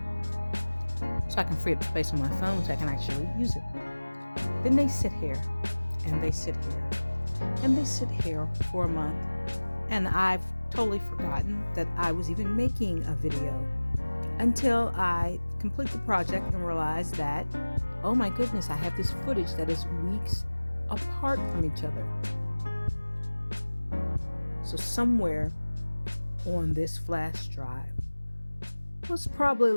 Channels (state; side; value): inverted; both; correlation -1.00